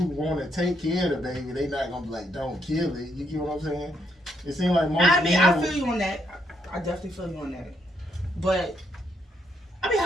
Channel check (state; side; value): normal; both; correlation 0.75